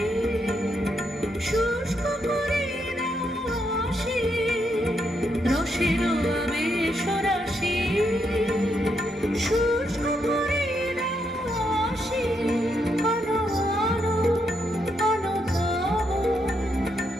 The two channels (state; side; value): normal; both; correlation 0.79